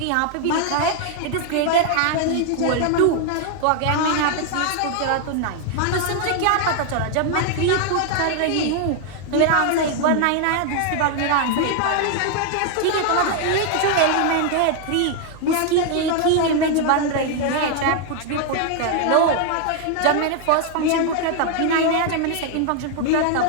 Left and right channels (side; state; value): both; different; correlation 0.00